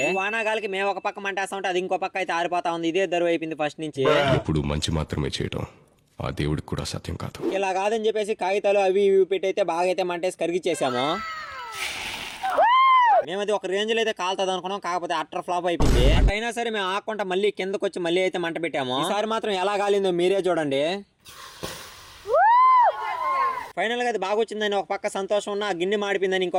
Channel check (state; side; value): identical; both; correlation 1.00